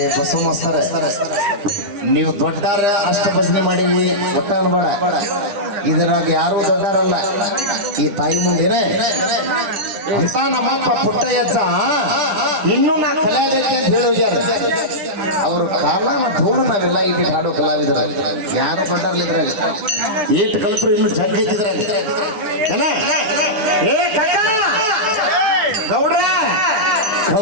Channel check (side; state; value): left; late; 9.9 ms